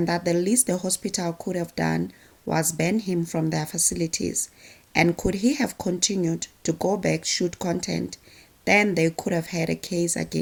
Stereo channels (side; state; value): both; identical; correlation 1.00